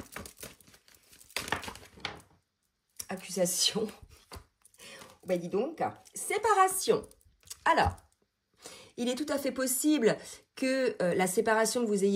accusation. Ben dis donc, séparation. Alors, il est tout à fait possible que la séparation que vous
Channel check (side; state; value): both; identical; correlation 1.00